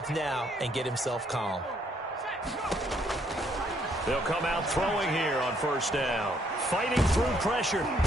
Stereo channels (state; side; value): normal; both; correlation 0.70